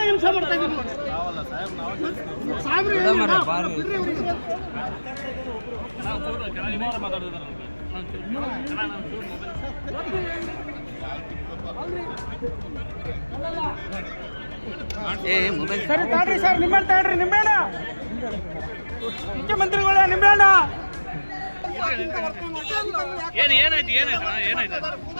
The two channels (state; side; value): inverted; both; correlation -1.00